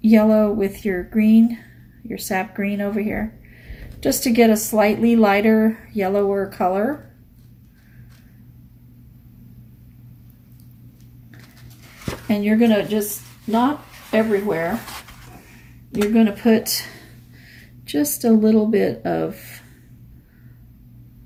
yellow with your green, your sap green over here, just to get a slightly lighter, yellower color. And you're gonna just, not everywhere, you're gonna put just a little bit of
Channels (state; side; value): identical; both; correlation 1.00